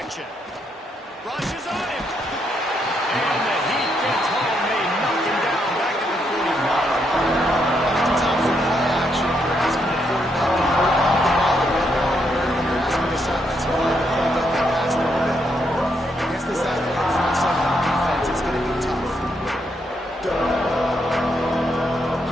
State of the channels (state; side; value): normal; both; correlation 0.77